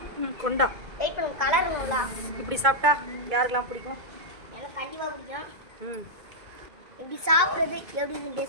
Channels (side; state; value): left; late; 2.2 ms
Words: கொண்டா இப்படி சாப்பிட்டா யாருக்கெல்லாம் பிடிக்கும்? எனக்கு கண்டிப்பாக பிடிக்கும். ம் இப்படி சாப்பிட்றது எப்படின்னு